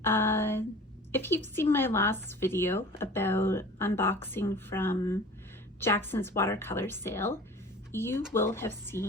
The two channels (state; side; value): normal; both; correlation 0.42